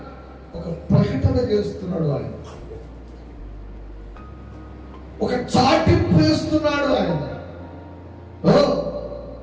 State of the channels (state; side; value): identical; both; correlation 1.00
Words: ఒక ప్రకటన చేస్తున్నాడు, ఆయన ఒక చాటింపు వేస్తున్నాడు. ఆయన